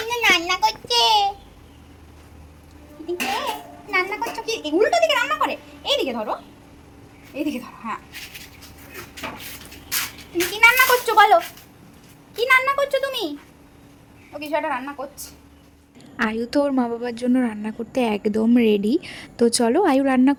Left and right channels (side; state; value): both; identical; correlation 1.00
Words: রান্না করছে। রান্না করছো কি? উল্টো দিকে রান্না করে, এইদিকে ধরো, এইদিকে ধরো। হ্যাঁ, তুমি কি রান্না করছো বলো? কি রান্না করছো তুমি? ও কিছু একটা রান্না করছে। আয়ু তো ওর মা বাবার জন্য রান্না করতে একদম রেডি। তো চলো আয়ু রান্না